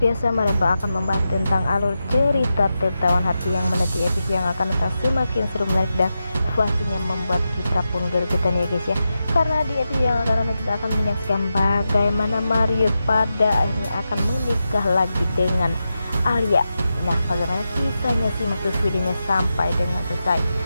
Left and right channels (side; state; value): both; inverted; correlation -0.89